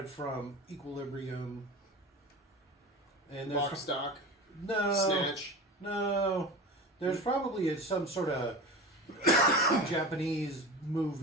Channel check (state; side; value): normal; both; correlation 0.31